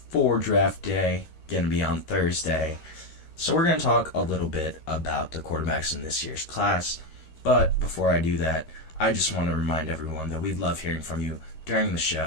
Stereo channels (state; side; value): late; right; 13 ms